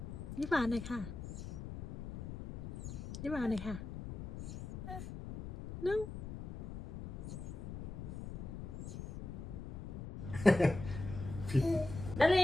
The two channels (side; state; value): left; noise; rumble, 9 dB below the sound